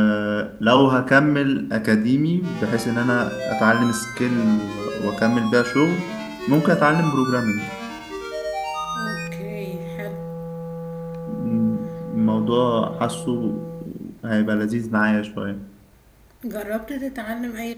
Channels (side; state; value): both; identical; correlation 1.00